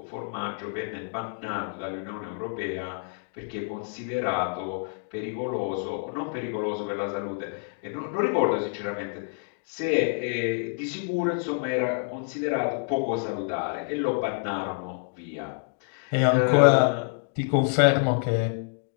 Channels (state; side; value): silent; right; digital silence